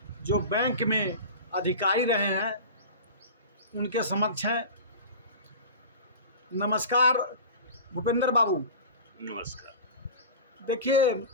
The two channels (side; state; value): both; inverted; correlation -0.34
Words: जो बैंक में अधिकारी रहे हैं उनके समक्ष हैं। नमस्कार भूपेंद्र बाबू। नमस्कार। देखिए,